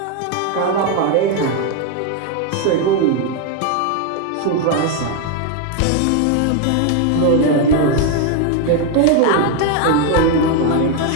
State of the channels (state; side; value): different; both; correlation 0.01